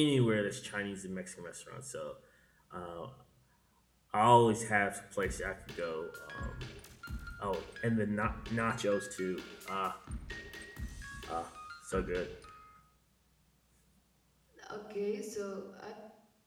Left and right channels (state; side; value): identical; both; correlation 1.00